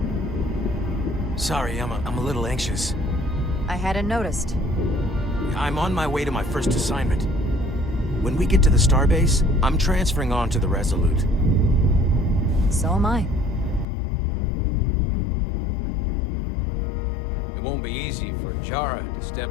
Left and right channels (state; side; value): drops out; right; at 13.9 s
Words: Sorry, I'm a little anxious. I hadn't noticed. I'm on my way to my first assignment. When we get to the starbase, I'm transferring on to the Resolute. So am I. It won't be easy for Jara to